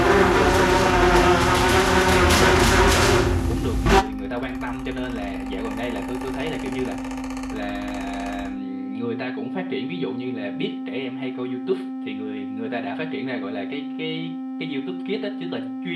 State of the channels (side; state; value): both; identical; correlation 1.00